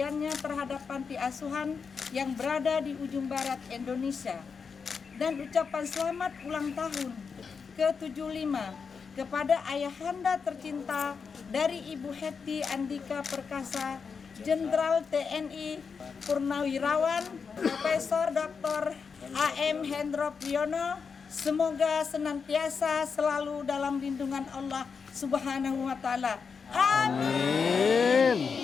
terhadap panti asuhan yang berada di ujung barat Indonesia, dan ucapan selamat ulang tahun ke-75 kepada ayahanda tercinta dari Ibu Hetty Andika Perkasa, Jenderal TNI Purnawirawan Profesor Dr. A.M. Hendro Priyono. Semoga senantiasa selalu dalam lindungan Allah Subhanahu wa taala. Amin.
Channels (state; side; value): quieter; right; 5.7 dB